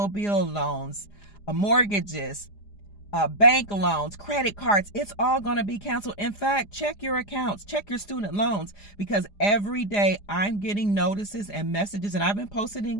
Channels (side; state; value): right; late; 4.9 ms